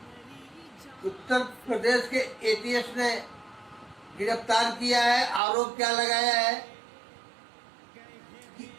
उत्तर प्रदेश के एटीएस ने गिरफ्तार किया है। आरोप क्या लगाया है कि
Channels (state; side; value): drops out; left; at 5.4 s